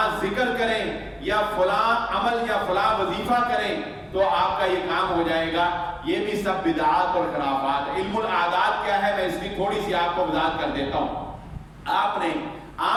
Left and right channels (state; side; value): identical; both; correlation 1.00